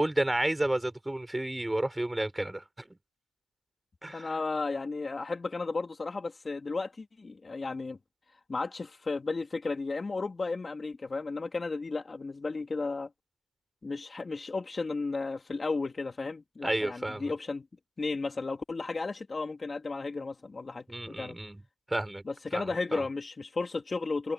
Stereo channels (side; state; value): both; normal; correlation 0.97